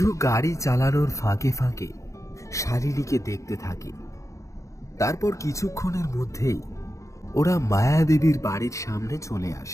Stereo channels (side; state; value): right; late; 0.15 ms